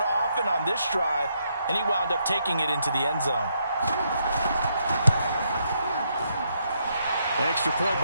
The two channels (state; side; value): inverted; both; correlation -0.76